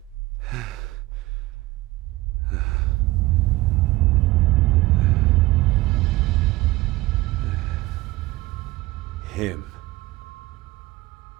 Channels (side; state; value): left; quieter; 19.2 dB